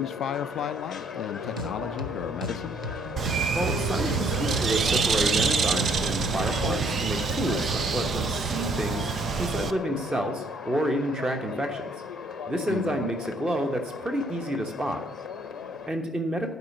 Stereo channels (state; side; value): normal; both; correlation 0.65